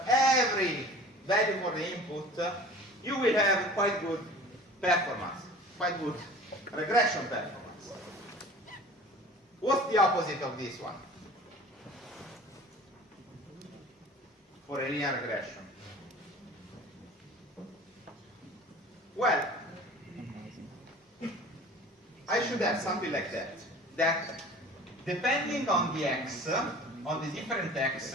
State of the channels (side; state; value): both; normal; correlation 0.43